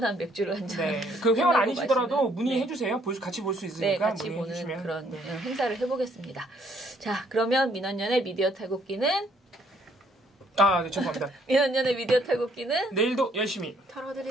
맥주를 한 잔. 그 회원 아니시더라도 문의해 주세요. 같이 볼 수 있으니까 같이 보는 그런 행사를 해보겠습니다. 자, 그러면 민원연의 미디어 탈곡기는 네, 죄송합니다. 민원연의 미디어 탈곡기는 내일도 열심히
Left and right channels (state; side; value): normal; both; correlation 0.67